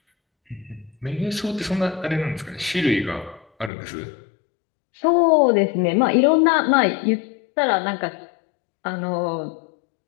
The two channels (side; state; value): right; drops out; at 3.7 s